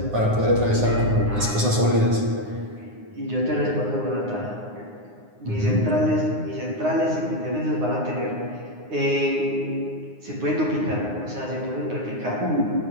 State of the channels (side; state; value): left; late; 9.6 ms